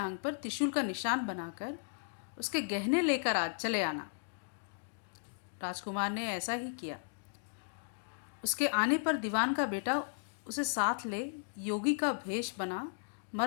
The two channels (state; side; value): silent; right; digital silence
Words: पर त्रिशूल का निशान बनाकर उसके गहने लेकर आज चले आना। राजकुमार ने ऐसा ही किया। उसके आने पर दीवान का बेटा उसे साथ ले योगी का भेष बना